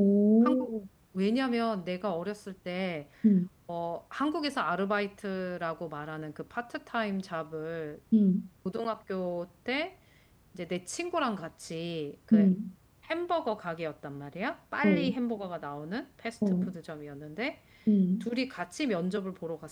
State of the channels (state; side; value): identical; both; correlation 1.00